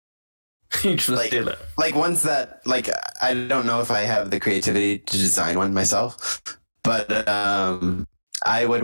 You just steal it. Like ones that, like, I don't know if I have the creativity to design one myself, but I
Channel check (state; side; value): inverted; both; correlation -1.00